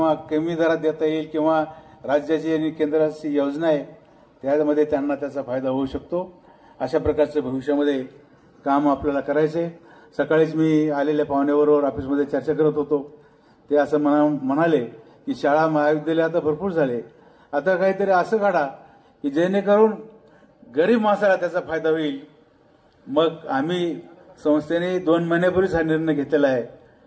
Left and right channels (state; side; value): identical; both; correlation 1.00